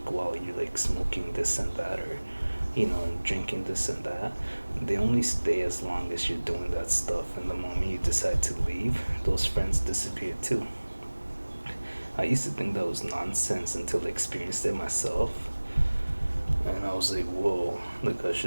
while you're like smoking this and that, or and drinking this and that, they only stay as long as you're doing that stuff. And the moment you decide to leave, those friends disappear too. I used to think that was nonsense until I experienced it myself. And I was like, whoa, like I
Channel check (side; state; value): both; inverted; correlation -1.00